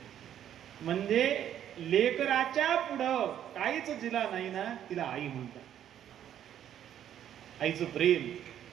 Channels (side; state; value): left; quieter; 10.4 dB